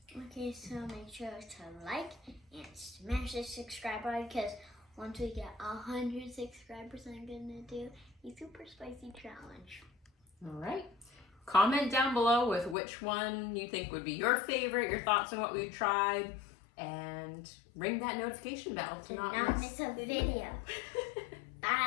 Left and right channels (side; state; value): right; drops out; at 12.8 s